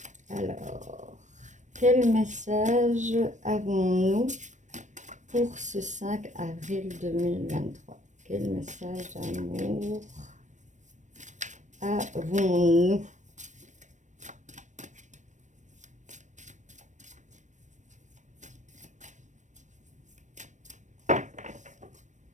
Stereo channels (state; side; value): late; left; 0.35 ms